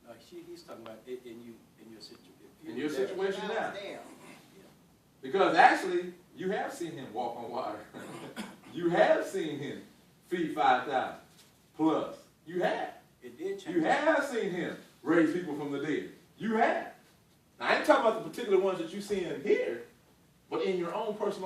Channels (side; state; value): both; identical; correlation 1.00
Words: it. No, he's talking about it in your situation. In your situation I now. was there. Because actually, you have seen him walk on water. You have seen him feed 5,000 plus. You have. It did change. You have seen him raise people from the dead. You have. Now, I ain't talking about the particular ones that you see in here, but in your own